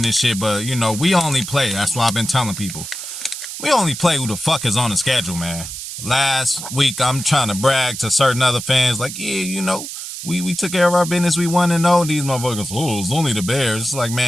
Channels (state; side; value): noise; right; hiss, 8 dB below the sound